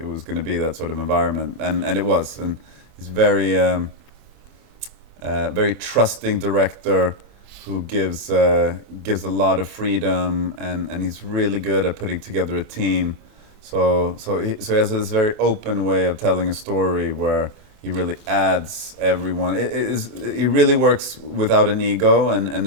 was going to be that sort of environment, and it was, and he's very trusting director who gives a lot of freedom, and he's really good at putting together a team. So he has this very open way of telling a story where he really adds everyone. He really works without an ego, and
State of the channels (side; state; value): left; late; 24 ms